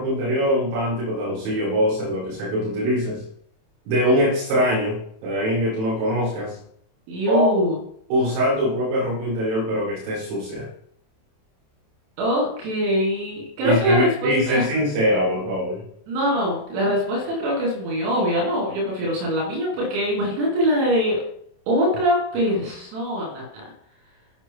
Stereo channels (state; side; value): late; left; 27 ms